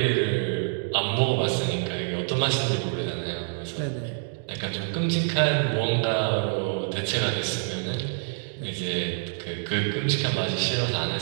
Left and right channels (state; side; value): silent; left; digital silence